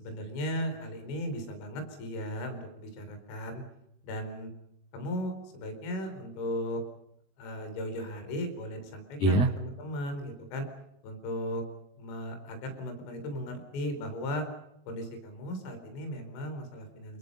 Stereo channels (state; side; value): late; right; 21 ms